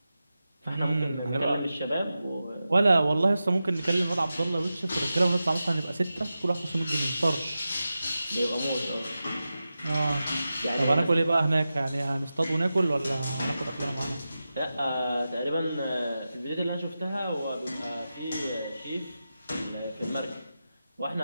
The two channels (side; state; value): both; inverted; correlation -0.92